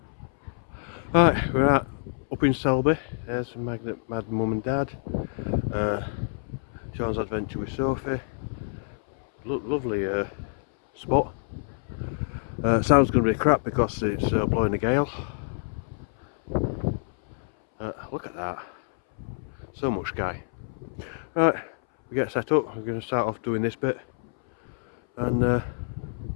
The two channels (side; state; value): right; silent; 60 dB below the other